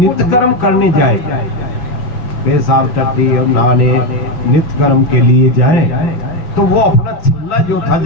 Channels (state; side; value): late; right; 5.9 ms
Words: कर्म करने जाए, पेशाब टट्टी और नहाने नित्य कर्म के लिए जाए, तो वो अपना छल्ला जो था,